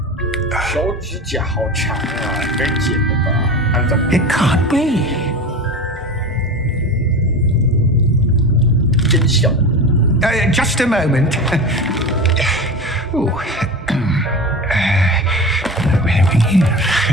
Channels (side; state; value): both; normal; correlation 0.29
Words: 手指甲好长啊，应该剪的吧？看怎么 It can't be. 真小。Just a moment. Ooh. Where are we here?